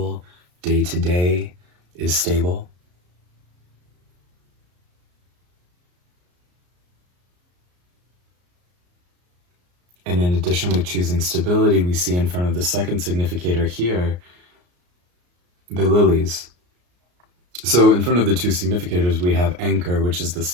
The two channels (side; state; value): left; late; 34 ms